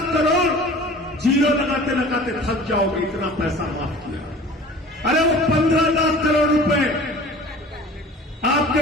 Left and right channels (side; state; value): both; normal; correlation 0.43